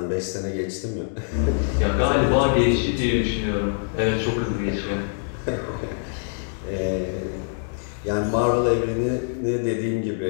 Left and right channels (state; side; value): silent; right; digital silence